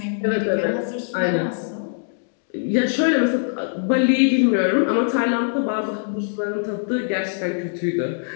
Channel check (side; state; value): right; silent; digital silence